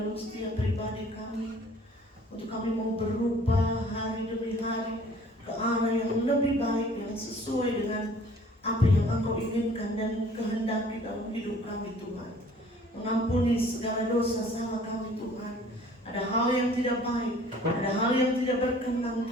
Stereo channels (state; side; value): normal; both; correlation 0.53